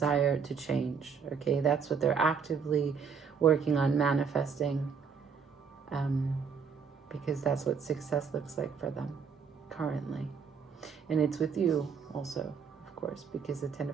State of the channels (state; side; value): quieter; left; 6.1 dB